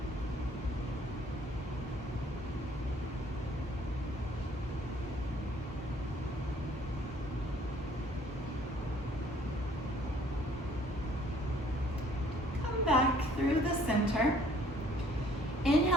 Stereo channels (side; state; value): both; normal; correlation 0.59